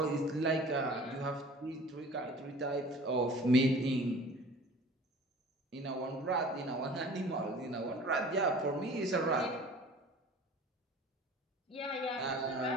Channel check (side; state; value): both; normal; correlation 0.45